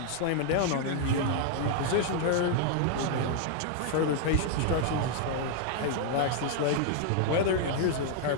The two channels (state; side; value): different; both; correlation 0.00